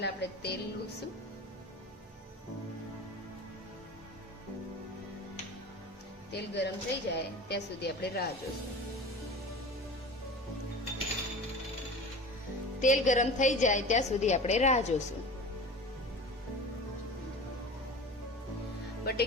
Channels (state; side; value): normal; both; correlation 0.35